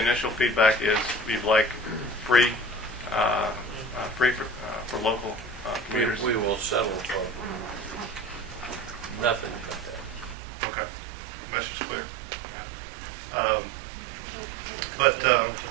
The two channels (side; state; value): left; drops out; at 10.4 s